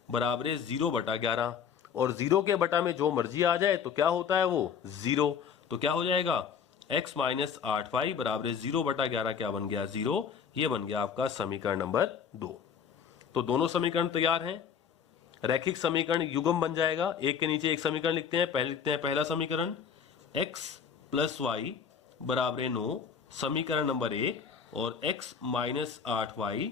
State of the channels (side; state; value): right; quieter; 7.1 dB